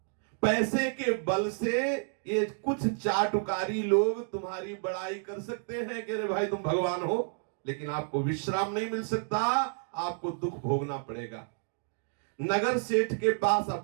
पैसे के बल से ये कुछ चाटुकारी लोग तुम्हारी बड़ाई कर सकते हैं कि अरे भाई तुम भगवान हो, लेकिन आपको विश्राम नहीं मिल सकता, आपको दुख भोगना पड़ेगा। नगर सेठ के पास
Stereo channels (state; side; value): silent; left; 58 dB below the other